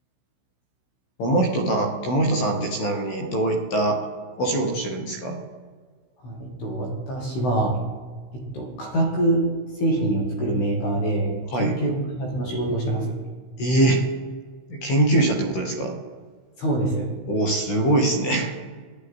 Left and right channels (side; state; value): right; late; 16 ms